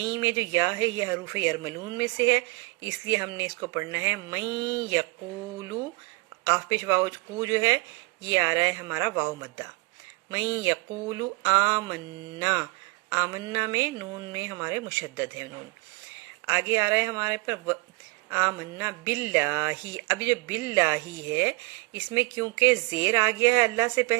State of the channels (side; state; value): left; quieter; 26.6 dB